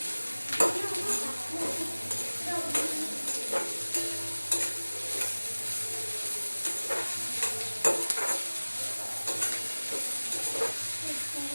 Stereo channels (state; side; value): inverted; both; correlation -1.00